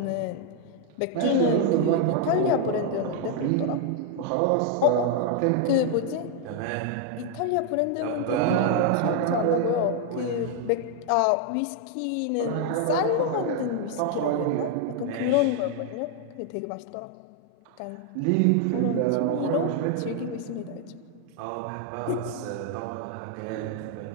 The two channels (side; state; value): both; different; correlation 0.00